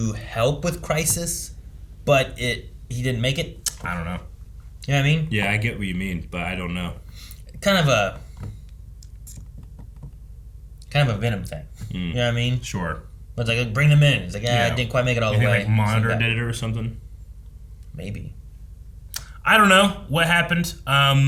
help with Crisis, but he didn't make it? I don't know. You know what I mean? Yeah, I get what you mean, but I don't know. Kind of a Venom thing. You know what I mean? Sure. But it's like, bring them in. It's like, I didn't quite make it all the way. Like Monitor did it or something? Maybe. I don't know what happened.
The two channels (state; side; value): identical; both; correlation 1.00